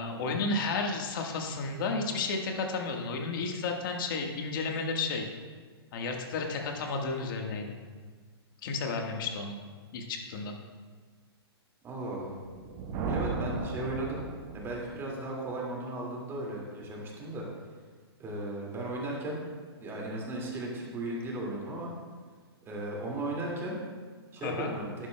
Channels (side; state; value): both; normal; correlation -0.12